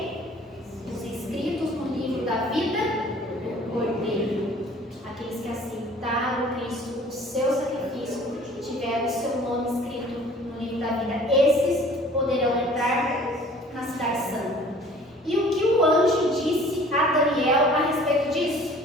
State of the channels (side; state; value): both; normal; correlation 0.51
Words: Os inscritos no livro da vida do Cordeiro. Aqueles que aceitaram Cristo, o seu sacrifício, tiveram o seu nome escrito no livro da vida. Esses poderão entrar na cidade santa. E o que o anjo disse a Daniel a respeito disso?